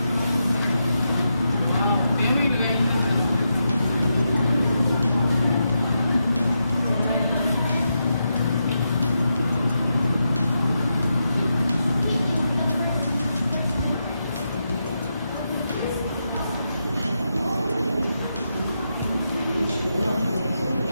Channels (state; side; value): inverted; both; correlation -0.85